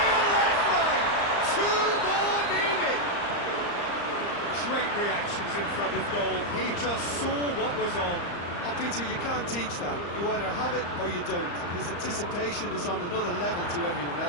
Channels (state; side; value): late; right; 34 ms